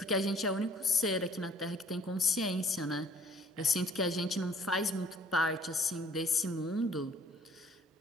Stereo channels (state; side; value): normal; both; correlation 0.56